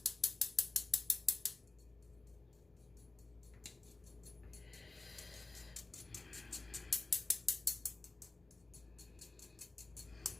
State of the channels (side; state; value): right; quieter; 3.2 dB